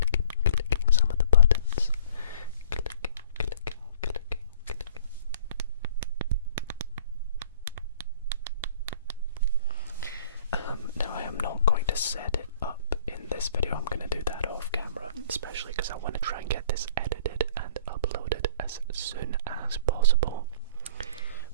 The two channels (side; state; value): both; inverted; correlation -0.51